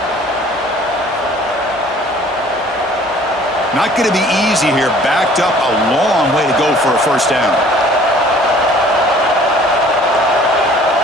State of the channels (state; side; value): normal; both; correlation 0.53